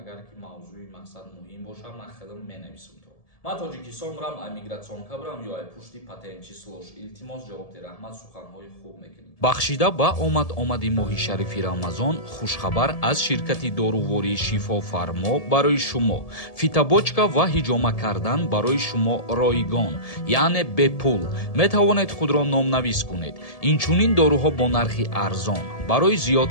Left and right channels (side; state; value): right; late; 1.7 ms